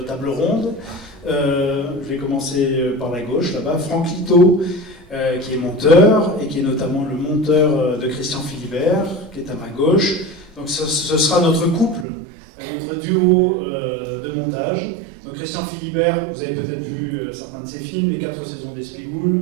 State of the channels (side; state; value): left; drops out; at 12.1 s